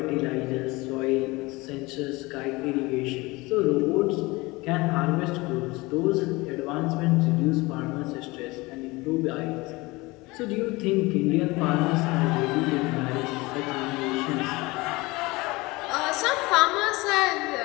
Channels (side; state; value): right; quieter; 22.7 dB